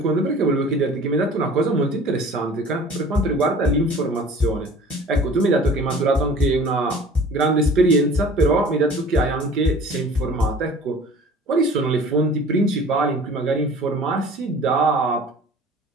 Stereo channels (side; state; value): both; normal; correlation 0.46